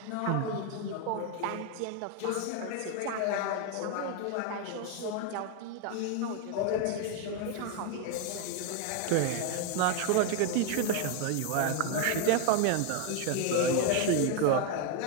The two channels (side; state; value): both; different; correlation 0.01